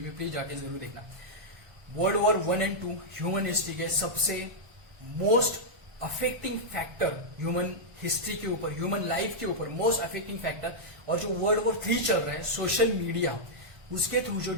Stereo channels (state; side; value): late; left; 1.3 ms